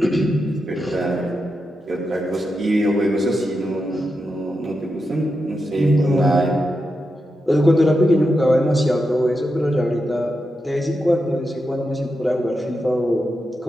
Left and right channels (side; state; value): both; normal; correlation 0.87